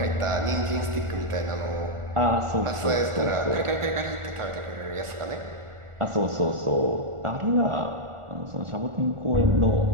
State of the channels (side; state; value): left; late; 1.4 ms